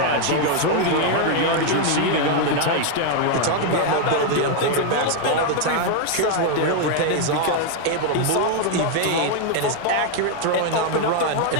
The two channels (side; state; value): both; different; correlation 0.01